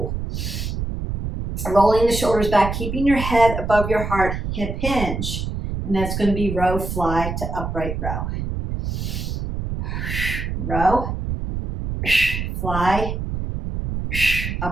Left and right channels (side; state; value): right; noise; rumble, 4 dB below the sound